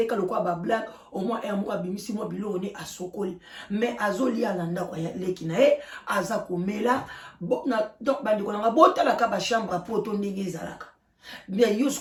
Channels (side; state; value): both; identical; correlation 1.00